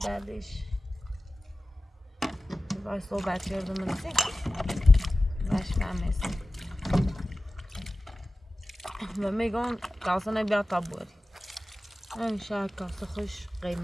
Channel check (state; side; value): normal; both; correlation 0.95